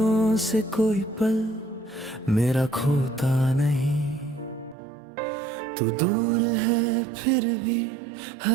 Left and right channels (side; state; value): left; drops out; at 4.8 s